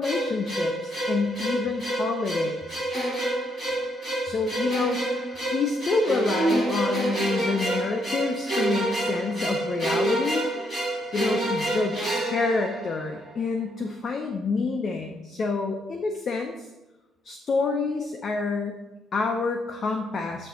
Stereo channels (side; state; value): both; normal; correlation 0.75